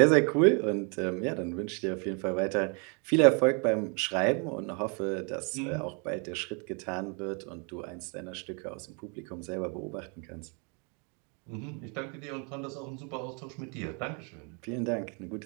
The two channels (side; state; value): left; quieter; 35.5 dB